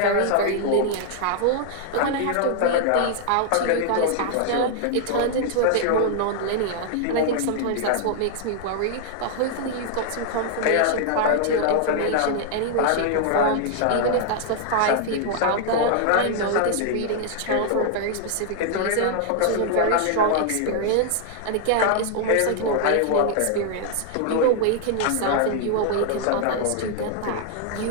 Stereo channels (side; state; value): both; different; correlation 0.00